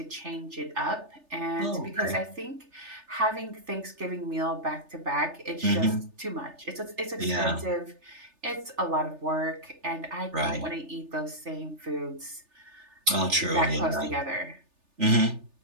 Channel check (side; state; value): left; late; 3.3 ms